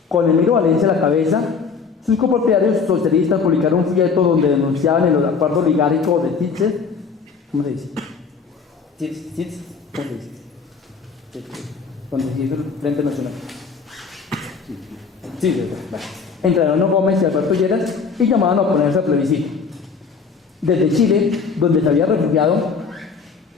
Con Emilio Valencia a la cabeza, sus copropietarios socialistas publicaron un folleto donde denunciaban el acuerdo oligárquico de Titz, ¿cómo se dice? Titz, ¿cómo se dice? Donde se hizo el Frente Nacional. Sí, vale. Entre Alonso Gómez y Alberto Lleras, y llamaban a oponerse al plebiscito. Desde Chile, donde se había refugiado,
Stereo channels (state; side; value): quieter; right; 5.3 dB